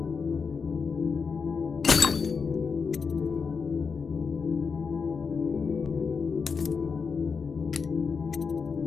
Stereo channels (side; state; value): right; quieter; 5.5 dB